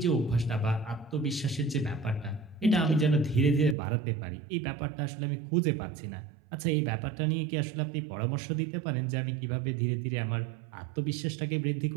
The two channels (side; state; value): left; drops out; at 3.8 s